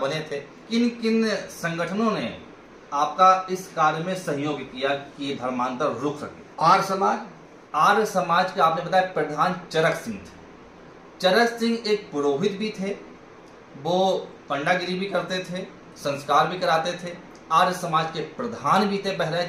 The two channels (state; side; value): identical; both; correlation 1.00